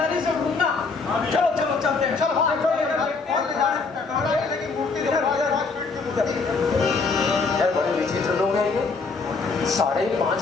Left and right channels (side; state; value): right; quieter; 4.3 dB